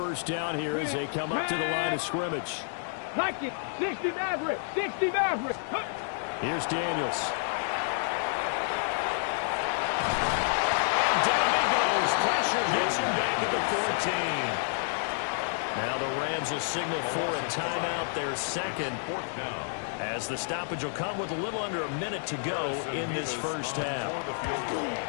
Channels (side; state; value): right; silent; digital silence